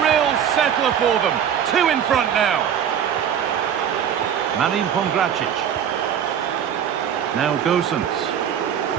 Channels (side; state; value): left; quieter; 8.9 dB